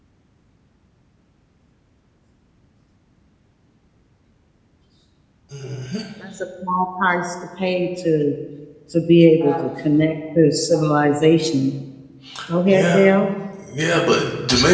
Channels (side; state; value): both; identical; correlation 1.00